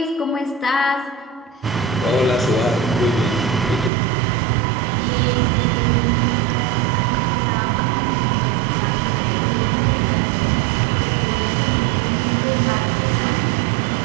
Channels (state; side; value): drops out; left; at 3.9 s